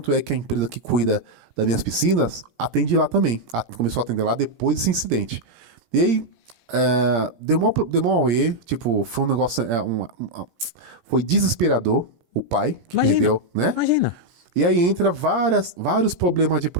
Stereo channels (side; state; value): left; late; 17 ms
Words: a empresa que cuida das minhas piscinas atende lá também. Começou a atender lá depois desse incidente. E aí, deu mó auê, tipo, foi um negócio, foi desesperador o pai que Imagina, perdeu, né? Imagina. E aí entra vários problemas de